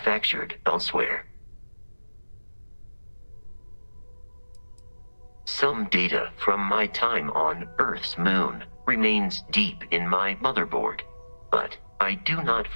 elsewhere. Some data from my time on Earth's moon remains deep in my motherboard, but I do not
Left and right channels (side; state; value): both; inverted; correlation -1.00